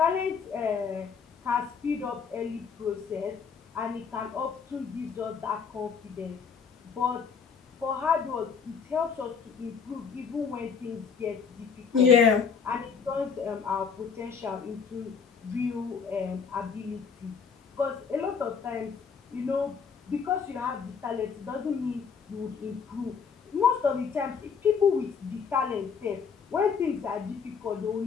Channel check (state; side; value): quieter; right; 6.1 dB